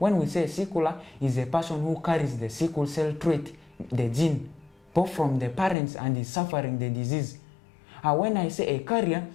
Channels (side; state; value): right; drops out; at 5.8 s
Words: we say sickler, is a person who carries the sickle cell trait, the gene, both from the parents and is suffering the disease. When I say a carrier